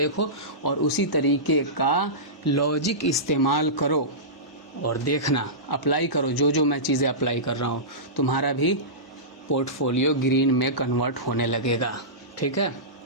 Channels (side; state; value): both; normal; correlation -0.18